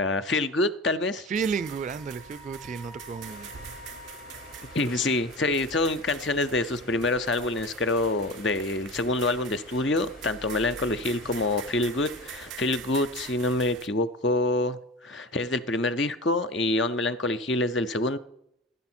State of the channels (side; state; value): both; normal; correlation 0.31